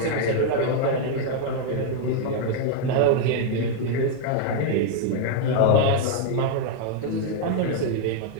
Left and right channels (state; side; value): different; both; correlation 0.00